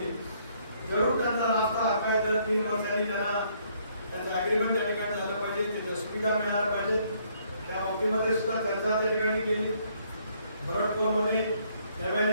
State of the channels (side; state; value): both; inverted; correlation -0.67